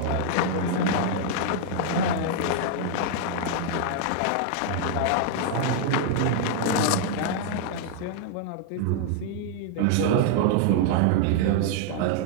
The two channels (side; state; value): both; different; correlation 0.00